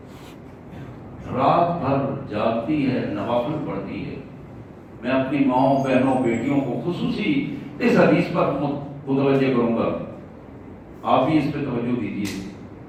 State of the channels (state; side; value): identical; both; correlation 1.00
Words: رات بھر جاگتی ہے, نوافل پڑھتی ہے. میں اپنی ماؤں بہنوں بیٹیوں کو خصوصی اس حدیث پر متوجہ کروں گا, آپ بھی اس پہ توجہ دیجیے.